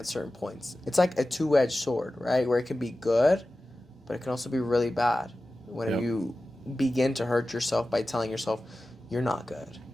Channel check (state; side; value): normal; both; correlation 0.95